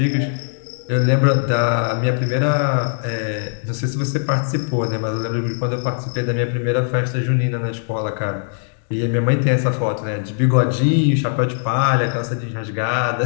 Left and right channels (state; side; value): silent; right; digital silence